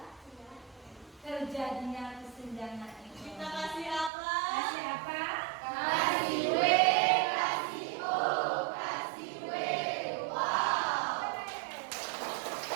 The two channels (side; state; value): left; drops out; at 4.1 s